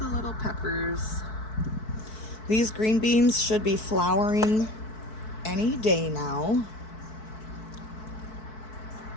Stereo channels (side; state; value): right; late; 4.6 ms